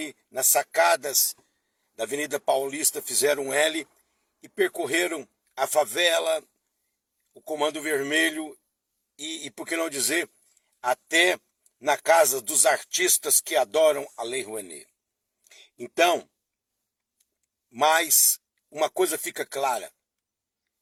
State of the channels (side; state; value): both; identical; correlation 1.00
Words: nas sacadas da Avenida Paulista fizeram L e percorreram a favela, o Comando Vermelho e por que não dizer, até na casa dos artistas que adoram a Lei Rouanet. Então, mas uma coisa fica clara.